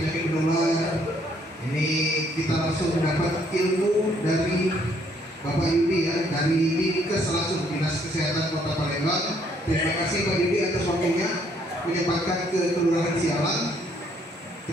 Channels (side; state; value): both; normal; correlation 0.67